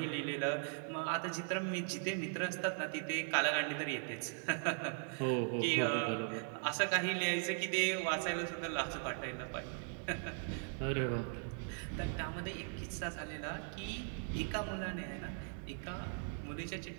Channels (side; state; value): left; silent; 52 dB below the other